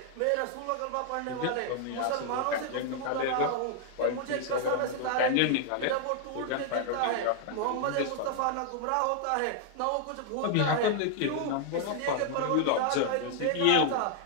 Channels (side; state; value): both; different; correlation 0.00